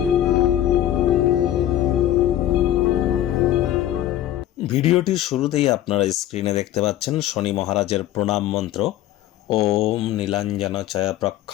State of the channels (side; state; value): right; quieter; 12.9 dB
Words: ভিডিওটির শুরুতেই আপনারা স্ক্রিনে দেখতে পাচ্ছেন শনি মহারাজের প্রণাম মন্ত্র। ওম নীলাঞ্জন ছায়া